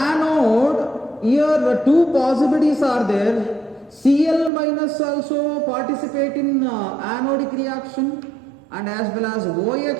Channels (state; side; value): drops out; left; at 4.5 s